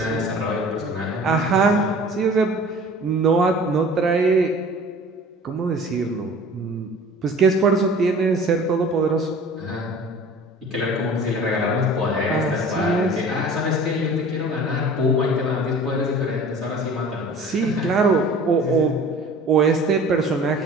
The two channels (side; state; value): both; normal; correlation 0.44